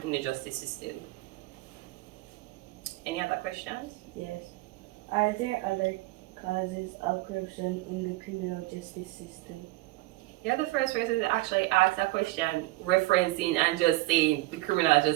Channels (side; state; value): left; quieter; 19.8 dB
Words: in the justice system. Any other questions? Yes. Are there other causes of corruption in the criminal justice system? You're the first person to actually ask that question, referencing and just saying the criminal